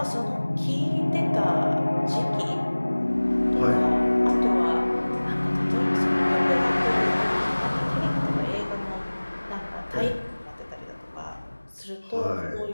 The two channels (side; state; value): both; inverted; correlation -1.00